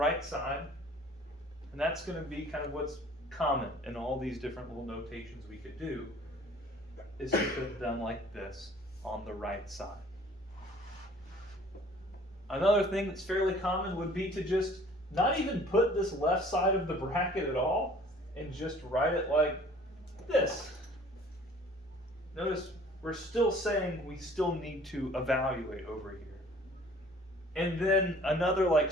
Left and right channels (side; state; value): both; normal; correlation 0.52